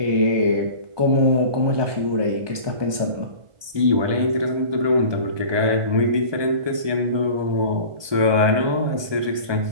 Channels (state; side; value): late; left; 1.2 ms